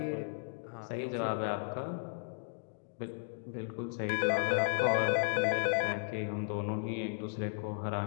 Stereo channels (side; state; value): right; silent; digital silence